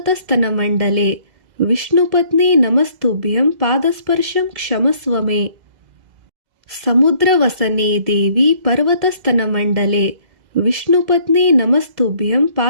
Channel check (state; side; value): late; left; 2.0 ms